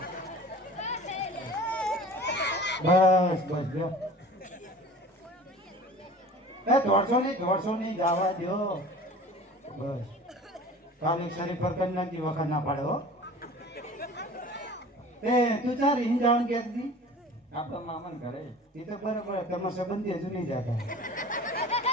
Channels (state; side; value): normal; both; correlation 0.42